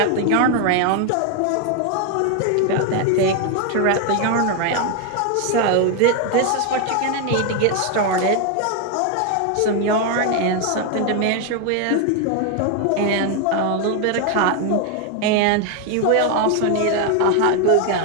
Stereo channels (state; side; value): different; both; correlation 0.01